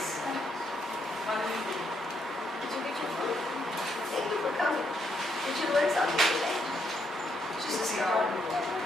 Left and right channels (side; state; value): both; normal; correlation 0.76